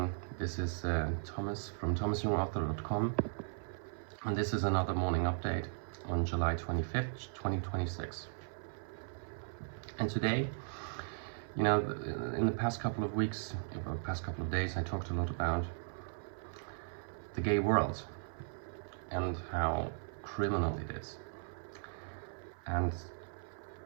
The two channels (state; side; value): silent; left; 53 dB below the other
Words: this is Thomas from thomasyoungauthor.com, and this is another morning update on July 25th, 2026. And today, in the past couple of weeks, or past couple of days, I talked a lot about the gay world and how criminal it is. And